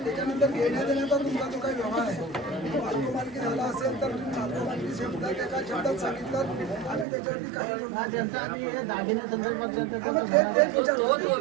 त्याच्यानंतर घेण्या देण्याचा तुमचा जो काही व्यवहार आहे, मालकी झाला असेल तर तुम्ही मालकी शब्दात एका शब्दात सांगितलं आम्ही त्याच्यावरती काही बोलू नाही. त्यांचा आधी हे दागिन्या संदर्भात हा, मग तेच विचारतो. तो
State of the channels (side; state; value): left; drops out; at 7.1 s